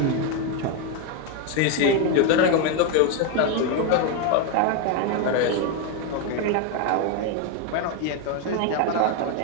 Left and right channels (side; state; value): both; different; correlation 0.02